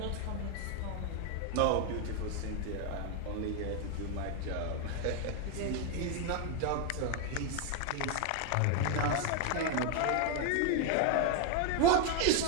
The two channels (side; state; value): both; different; correlation 0.01